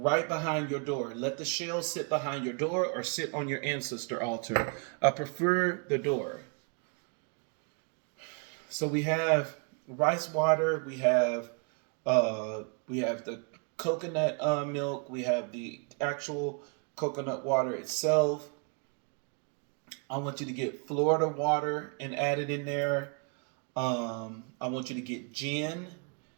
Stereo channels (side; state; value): left; quieter; 36.7 dB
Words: behind your door. Let the shell sit behind your door or sit on your ancestor altar. I prefer the door. So we have rice water, we have the coconut milk, we have the actual coconut water itself. I want you to get Florida water and add it in there. I want you to get gin,